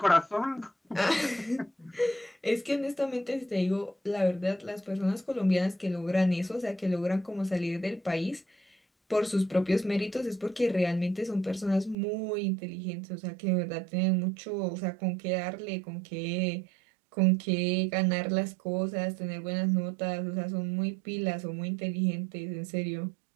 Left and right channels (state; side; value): drops out; left; at 12.0 s